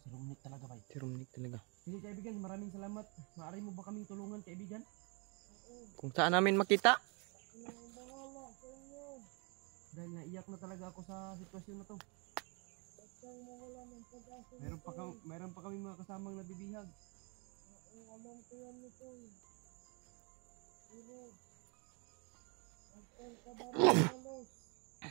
Romnek talaga ba? Si Romnek talaga. Sige kaibigan, maraming salamat. Maaari mo ba kaming tulungan kaibigan? Kung saan namin makita. Ako na ang bahala sa inyo. Dahil naiyak na talaga ako sa sitwasyon na to. Meron pa kami mga kasamang nabibihag. Oo, alam ko yan nito. Pero, ang kababalos.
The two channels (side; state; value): left; quieter; 33.4 dB